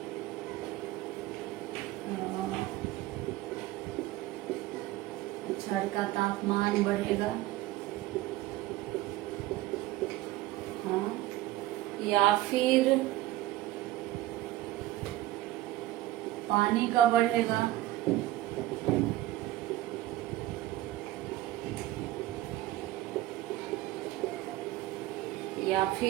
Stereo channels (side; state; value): left; quieter; 16.0 dB